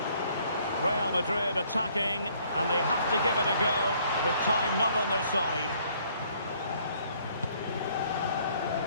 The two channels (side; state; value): both; inverted; correlation -0.63